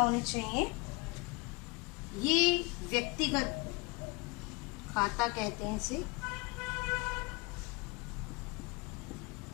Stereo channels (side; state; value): right; quieter; 26.2 dB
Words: चाहिए। ये व्यक्तिगत खाता कहते हैं इसे।